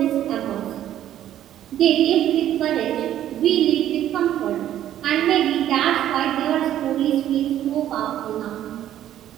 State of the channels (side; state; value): left; quieter; 11.8 dB